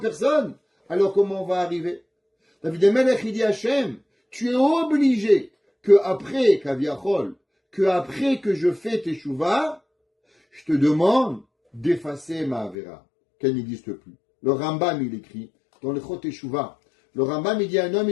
alors comment on va arriver? David Amelech, il dit Hachem, tu es obligé que après que je fais teshuva, je te demande d'effacer ma avera, qu'elle n'existe plus. Le Rambam, il écrit, dans le Chot Teshuvah. Le Rambam, il dit un homme,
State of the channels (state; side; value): drops out; right; at 12.8 s